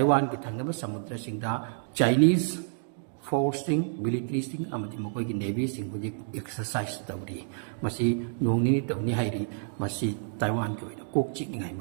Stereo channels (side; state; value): left; silent; digital silence